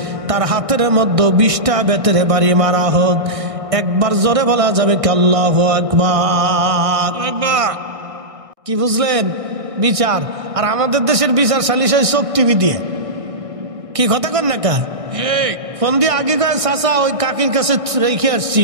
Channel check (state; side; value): late; left; 1.6 ms